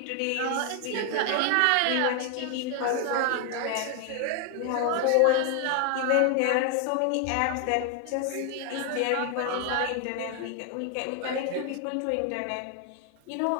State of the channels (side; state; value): both; different; correlation 0.00